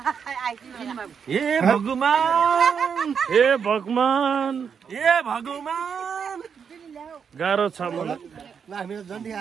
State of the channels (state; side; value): quieter; left; 6.8 dB